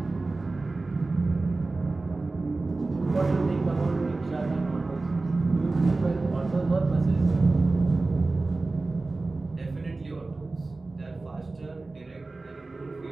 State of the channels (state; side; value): quieter; left; 3.4 dB